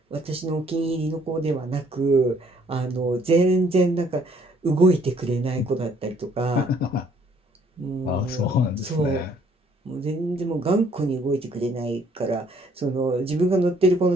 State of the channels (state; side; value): normal; both; correlation 0.63